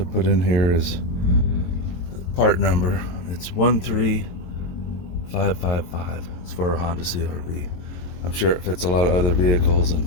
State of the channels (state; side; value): late; right; 22 ms